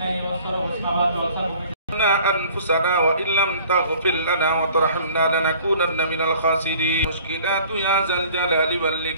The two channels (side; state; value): both; inverted; correlation -0.52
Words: أنفسنا وإن لم تغفر لنا وترحمنا لنكونن من الخاسرين مشكلات يا ذا الجلال